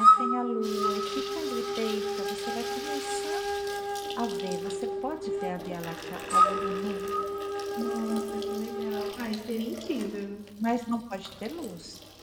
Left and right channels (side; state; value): both; identical; correlation 1.00